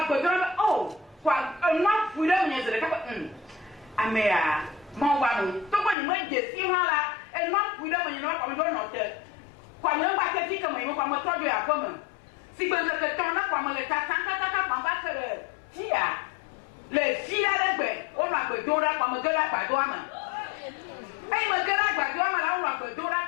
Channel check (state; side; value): drops out; right; at 6.0 s